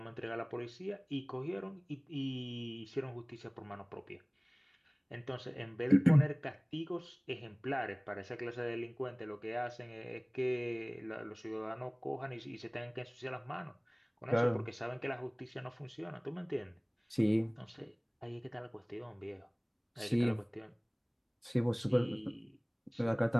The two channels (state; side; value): identical; both; correlation 1.00